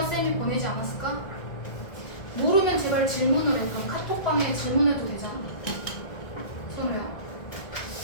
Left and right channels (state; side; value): late; right; 1.7 ms